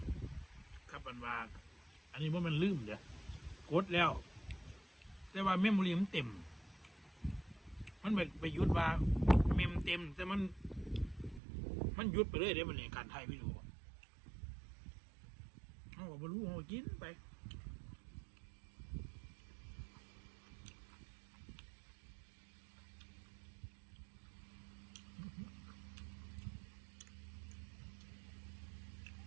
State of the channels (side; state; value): left; drops out; at 11.4 s